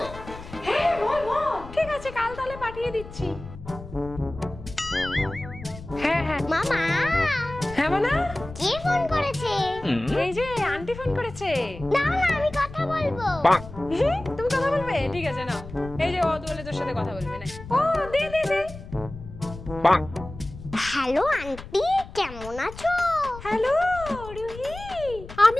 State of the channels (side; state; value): left; noise; rumble, 14 dB below the sound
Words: হ্যাঁ বল বল। ঠিক আছে, কাল তাহলে পাঠিয়ে দিচ্ছি। হ্যাঁ হ্যাঁ মামা। হ্যাঁ মানা, কে ফোন করেছে? এই যে আন্টি ফোন করেছে। না না, আমি কথা বলবো। তুমি কথা বলবে? ঠিক আছে না, এই যে ও বলে তোর সাথে কথা বলবে না। ও দে দে দে। হ্যালো আন্টি, কেমন আছো? হ্যালো রুহি,